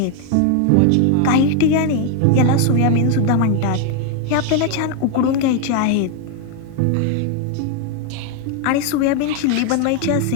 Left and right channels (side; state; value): both; different; correlation 0.00